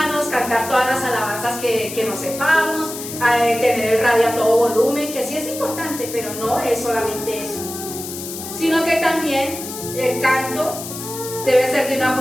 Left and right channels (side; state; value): left; noise; hiss, 9 dB below the sound